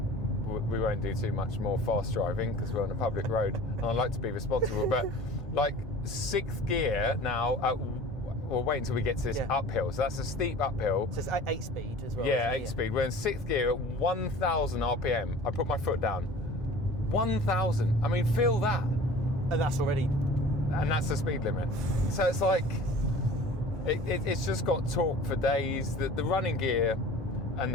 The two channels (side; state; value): both; normal; correlation 0.42